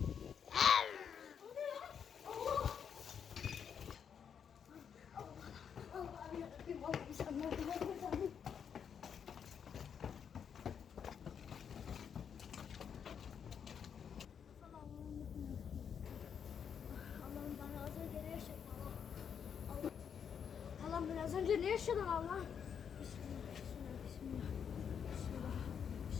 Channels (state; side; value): quieter; right; 7.5 dB